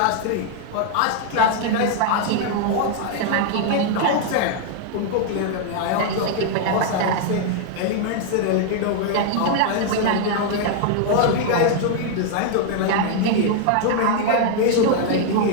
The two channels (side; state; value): both; different; correlation 0.00